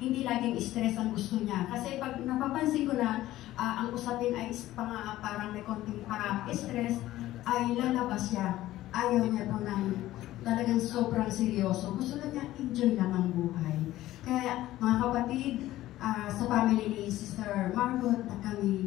laging stress ang gusto niya. Kasi pag napapansin ko na ang usapin ay parang may konting stress, ay lalabas siya. Ayaw niya po ng talagang sobrang seryoso. Gusto na niya enjoy lang ang buhay. Kaya mga kapatid, sa family ni Sister Margot, na kami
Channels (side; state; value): right; quieter; 15.2 dB